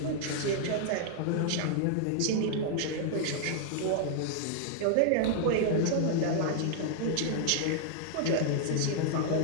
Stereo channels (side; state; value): both; different; correlation -0.01